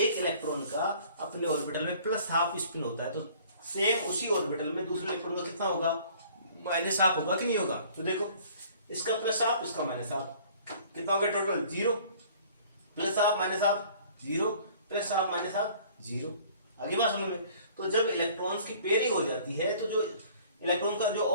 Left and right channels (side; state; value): both; inverted; correlation -0.53